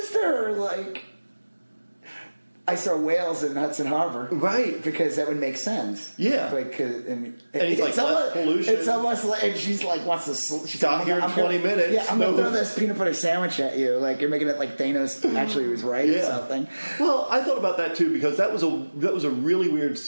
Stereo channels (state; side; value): inverted; both; correlation -1.00